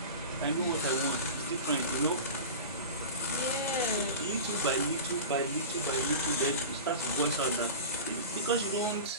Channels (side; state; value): both; inverted; correlation -0.31